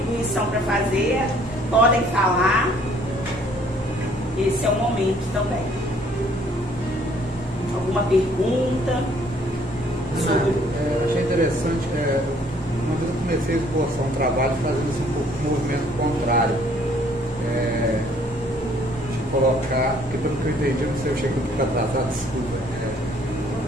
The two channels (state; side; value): normal; both; correlation 0.61